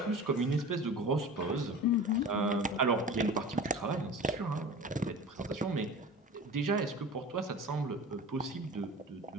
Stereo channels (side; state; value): both; normal; correlation 0.36